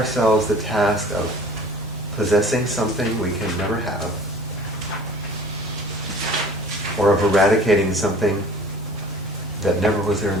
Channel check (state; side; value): normal; both; correlation 0.47